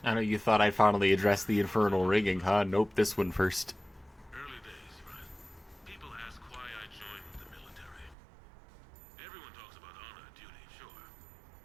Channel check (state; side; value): drops out; left; at 8.2 s